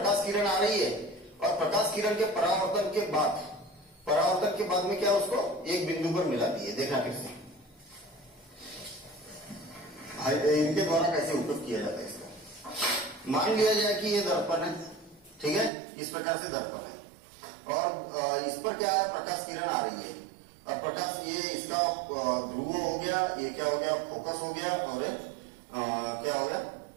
किरण आ रही है और प्रकाश किरण के परावर्तन के बाद में क्या उसको एक बिंदु पर मिलाती है। देखना फिर से इनके द्वारा कैसे उपयोग किया जाता है इसका। मान लिया जाए कि ये दर्पण है, ठीक है, इस प्रकार से दर्पण है और इस पर क्या है, प्रकाश किरण आ रही है और प्रकाश, ये इसका ध्रुव हो गया, ये क्या हो गया, फोकस हो गया, और क्या हो गया,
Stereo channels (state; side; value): drops out; left; at 15.7 s